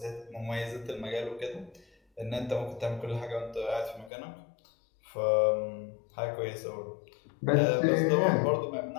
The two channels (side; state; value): right; drops out; at 4.1 s